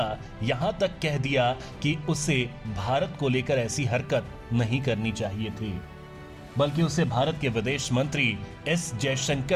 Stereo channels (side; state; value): both; identical; correlation 1.00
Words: यहाँ तक कह दिया कि उसे भारत को लेकर ऐसी हरकत नहीं करनी चाहिए थी, बल्कि उसे भारत के विदेश मंत्री एस